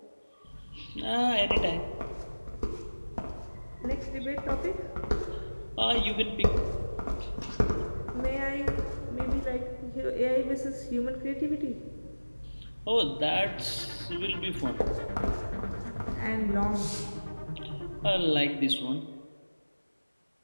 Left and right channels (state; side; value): inverted; both; correlation -1.00